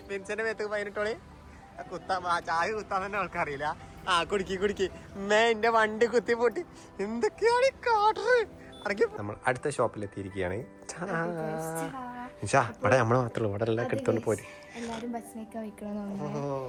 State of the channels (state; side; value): identical; both; correlation 1.00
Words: മിൻസിന്റെ മേത്ത് ഫൈൻ ഇട്ടോളി. ചായ കുത്താൻ തന്നെ ആൾക്കറിയില്ല. കുടിക്ക് എന്റെ വണ്ടി കുത്തി പൊട്ടി. എന്തൊക്കെയാണ് കാട്ടറ്. നമ്മൾ അടുത്ത ഷോപ്പിൽ എത്തിയിരിക്കുകയാണ്. ഇവിടെ നമ്മള് മാത്രമേ ഇവിടെ എല്ലാം എടുത്തോണ്ട് പോരും.